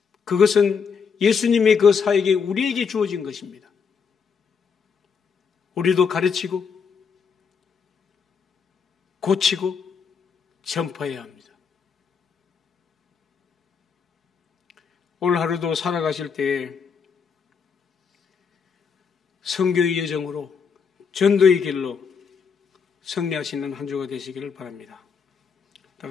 그것은 예수님의 그 사역이 우리에게 주어진 것입니다. 우리도 가르치고 고치고 전파해야 합니다. 오늘 하루도 살아가실 때에 선교의 여정으로 전도의 길로 승리하시는 한 주가 되시기를 바랍니다. 다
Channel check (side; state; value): right; quieter; 6.1 dB